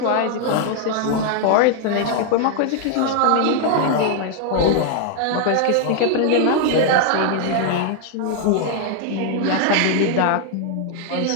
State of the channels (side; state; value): both; different; correlation 0.00